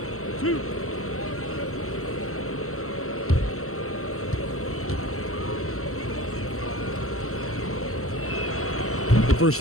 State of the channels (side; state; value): right; late; 0.63 ms